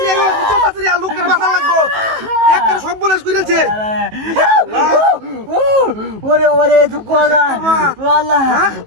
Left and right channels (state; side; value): late; left; 19 ms